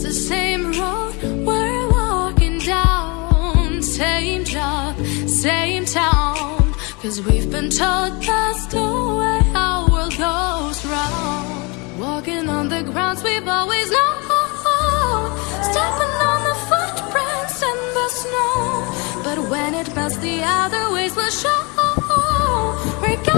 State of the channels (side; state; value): right; quieter; 29.1 dB